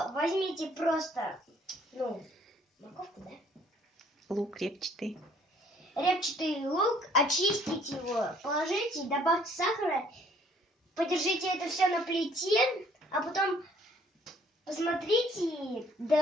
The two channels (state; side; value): normal; both; correlation 0.60